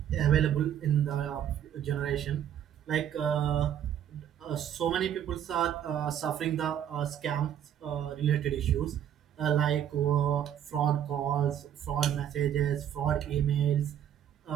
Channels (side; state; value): left; quieter; 10.0 dB